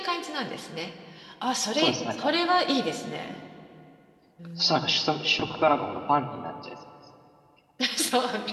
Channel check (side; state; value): both; identical; correlation 1.00